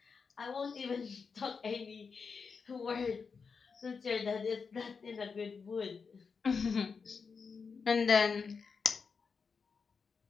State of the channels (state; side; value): quieter; right; 5.4 dB